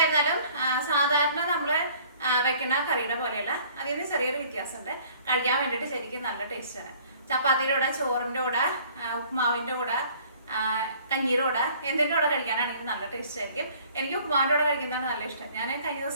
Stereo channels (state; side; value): inverted; both; correlation -0.54